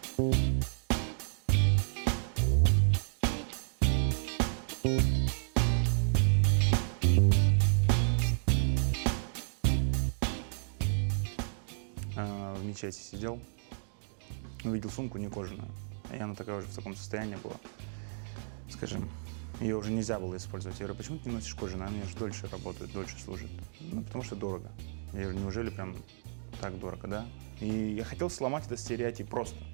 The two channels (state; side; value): silent; left; 56 dB below the other